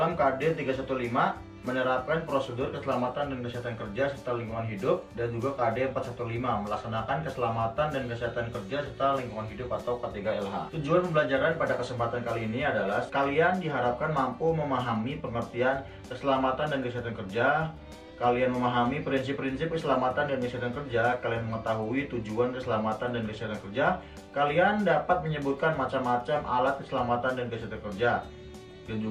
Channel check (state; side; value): identical; both; correlation 1.00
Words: KD 315, menerapkan prosedur keselamatan dan kesehatan kerja serta lingkungan hidup, dan juga KD 415, melaksanakan keselamatan dan kesehatan kerja serta lingkungan hidup atau K3LH. Tujuan pembelajaran pada kesempatan kali ini adalah kalian diharapkan mampu memahami pengertian keselamatan dan kesehatan kerja, kalian memahami prinsip-prinsip keselamatan dan kesehatan kerja, kalian mengetahui tujuan keselamatan dan kesehatan kerja, kalian dapat menyebutkan macam-macam alat keselamatan dan kesehatan kerja, dan